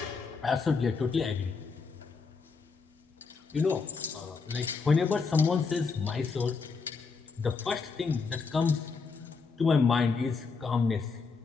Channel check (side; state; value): right; quieter; 4.8 dB